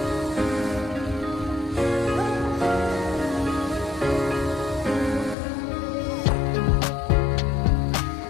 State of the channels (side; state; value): right; drops out; at 5.4 s